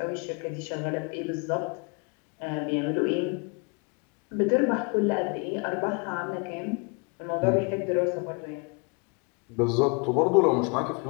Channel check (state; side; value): quieter; right; 33.3 dB